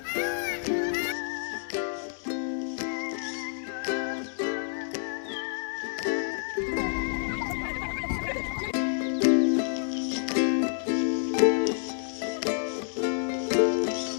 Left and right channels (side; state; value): right; silent; digital silence